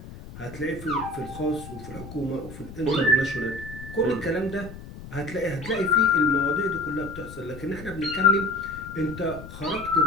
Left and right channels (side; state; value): left; noise; rumble, 14 dB below the sound